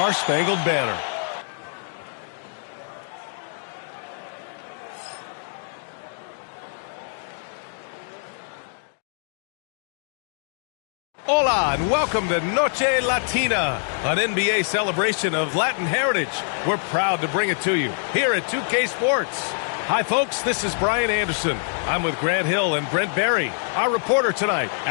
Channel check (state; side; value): silent; right; digital silence